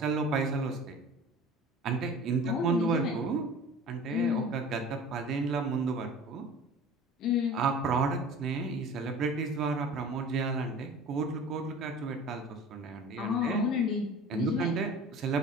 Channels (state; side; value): normal; both; correlation 0.41